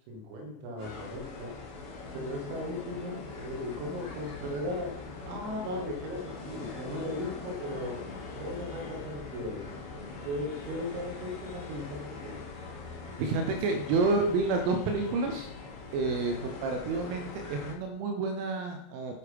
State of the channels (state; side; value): late; left; 28 ms